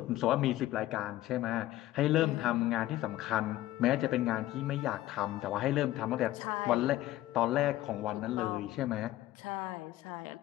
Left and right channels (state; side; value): quieter; right; 15.4 dB